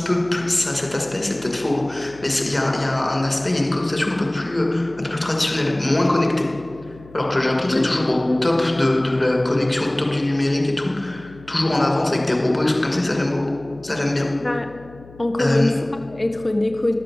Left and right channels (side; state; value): left; noise; hum, 21 dB below the sound